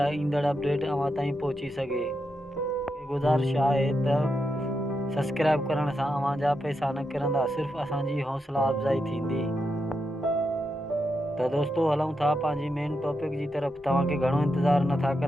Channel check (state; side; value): normal; both; correlation 0.85